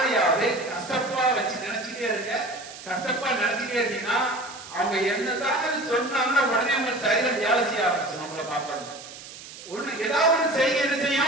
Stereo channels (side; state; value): right; noise; hiss, 15 dB below the sound